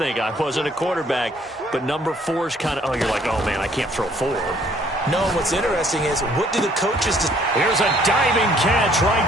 I wasn't a quarterback, but number 4 is kind of, you're like, oh, man, I can't throw 4. No, what's interesting is, what do the coaches do? Here's a diving catch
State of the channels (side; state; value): both; normal; correlation 0.62